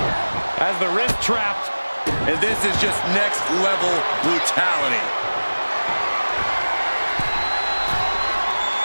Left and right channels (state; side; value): inverted; both; correlation -1.00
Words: As the wrist trapped. And this is just next level brutality.